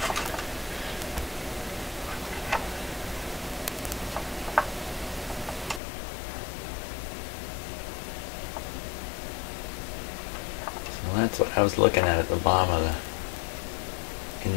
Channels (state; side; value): drops out; right; at 5.8 s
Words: So that's what I was looking at the bottom of the